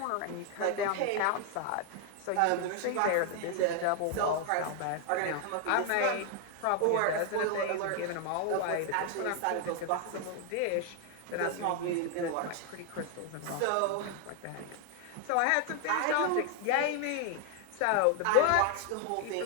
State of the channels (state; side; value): different; both; correlation 0.00